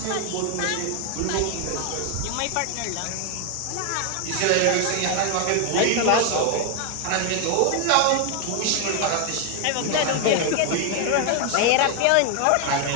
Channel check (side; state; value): both; different; correlation 0.00